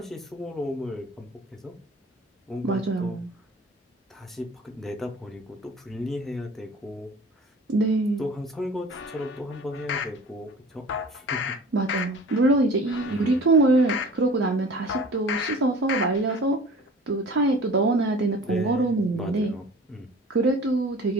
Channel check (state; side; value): normal; both; correlation 0.43